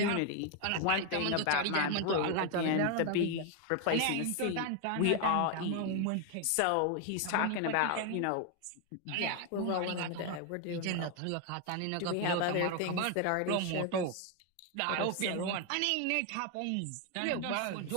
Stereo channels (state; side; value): different; both; correlation 0.01